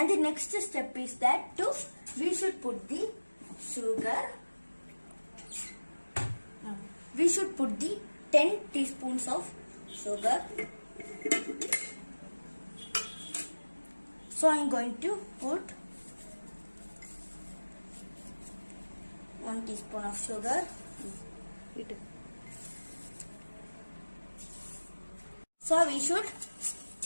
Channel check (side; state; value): both; inverted; correlation -1.00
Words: the next step is that we should put the sugar. We should put the 10 teaspoons of sugar. So I am going to put 1 teaspoon of sugar. So we should